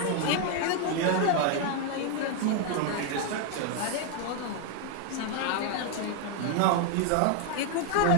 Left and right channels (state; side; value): different; both; correlation 0.01